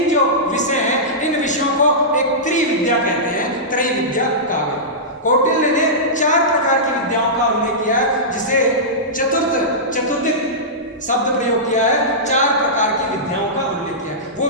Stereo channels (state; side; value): normal; both; correlation -0.15